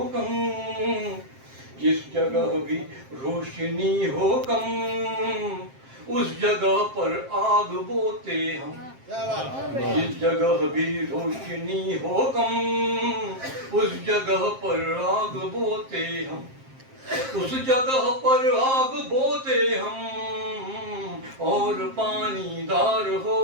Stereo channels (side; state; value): left; late; 7.5 ms